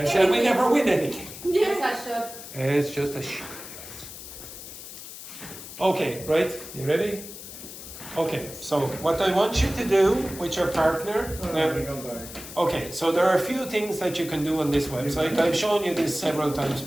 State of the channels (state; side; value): noise; left; hiss, 13 dB below the sound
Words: So we never win anything. Just a shot. It's just a Okay, right? You ready? Okay, so what I want you to do with your partner. Okay, so there are a few things that you can do on this website. I've shown you this several times